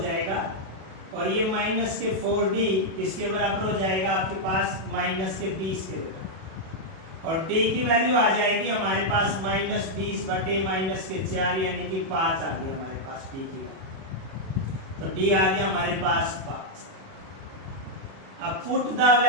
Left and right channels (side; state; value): left; late; 37 ms